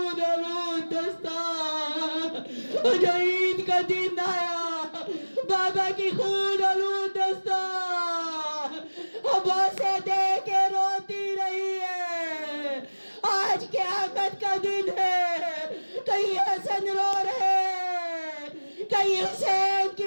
آلود دستار، جو عید کا دن آیا بابا کی خون آلود دستار عباسے دے کے روتی رہی ہے۔ آج قیامت کا دن ہے، کہیں حسن رو رہے، کہیں حسین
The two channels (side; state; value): both; inverted; correlation -1.00